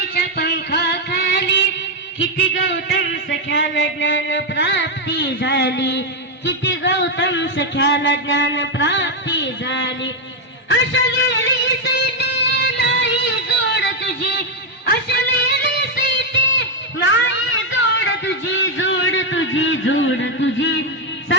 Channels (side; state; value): both; normal; correlation 0.03